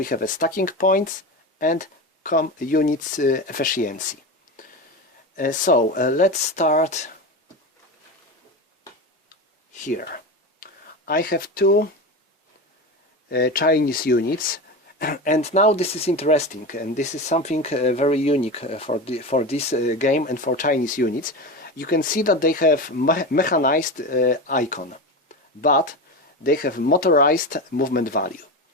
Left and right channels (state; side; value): normal; both; correlation 0.23